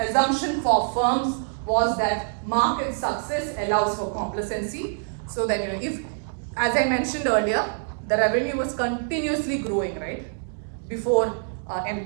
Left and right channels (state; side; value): silent; left; digital silence